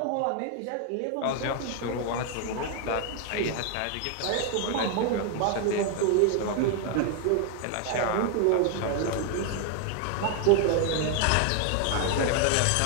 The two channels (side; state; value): both; different; correlation 0.00